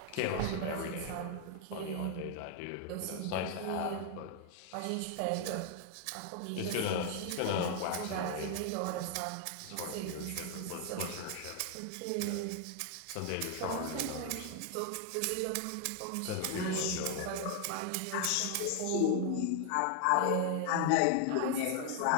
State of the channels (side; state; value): both; different; correlation 0.00